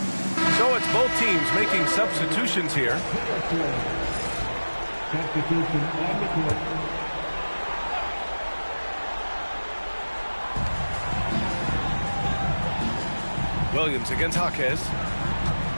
it's both teams making substitutions here. Substitution on the court. Williams against Jaquez.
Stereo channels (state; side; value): inverted; both; correlation -1.00